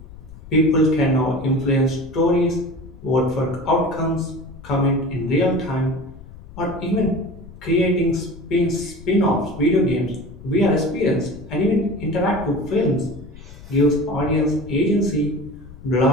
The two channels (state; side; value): noise; left; rumble, 17 dB below the sound